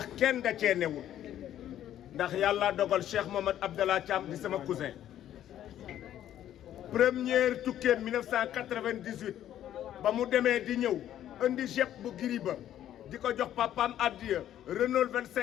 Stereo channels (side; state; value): right; quieter; 11.5 dB